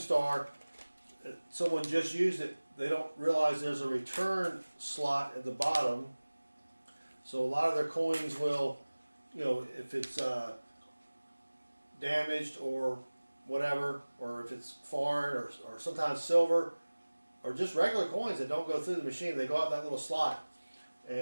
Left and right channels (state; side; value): inverted; both; correlation -1.00